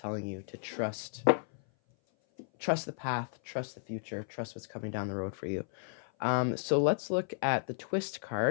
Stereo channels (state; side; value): silent; right; 55 dB below the other